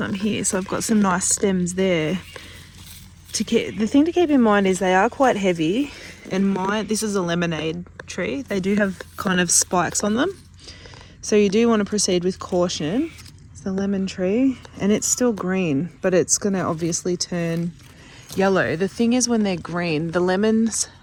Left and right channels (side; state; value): both; identical; correlation 1.00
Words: here. So I've got some nice stems there. The thing to keep in mind is they are quite heavy. And this is a lemonade tree. They do have kind of spikes on them. So you do want to proceed with caution. It's the lemon tree, and it's still green, but it's going to obviously turn yellow. The thing is, when they're green, the lemons